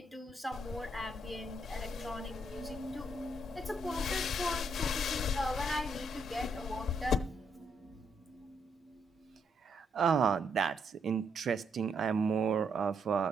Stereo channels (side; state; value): both; normal; correlation 0.75